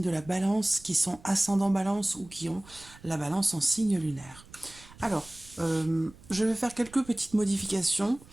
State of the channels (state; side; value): noise; right; rumble, 22 dB below the sound